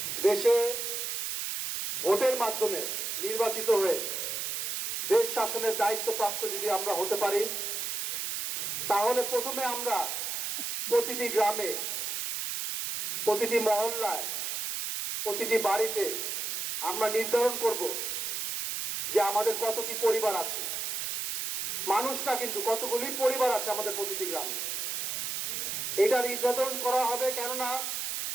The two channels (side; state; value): right; noise; hiss, 2 dB below the sound